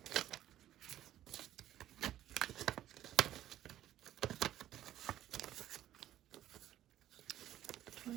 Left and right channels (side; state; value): left; quieter; 12.7 dB